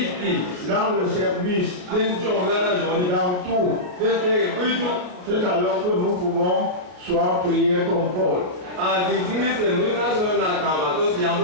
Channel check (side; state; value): left; late; 33 ms